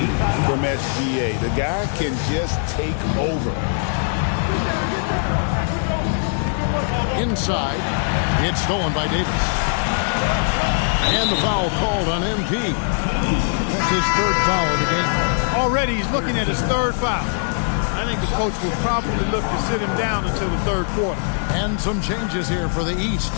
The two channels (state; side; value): silent; right; digital silence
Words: from SGA. The guy can just take over. Inside. It's stolen by Davis. And the foul called on MP. That's his 3rd foul of the game. Already he's looking at his 3rd foul. I think the coach will probably look to sit him down until the 3rd quarter. And some changes here for the East.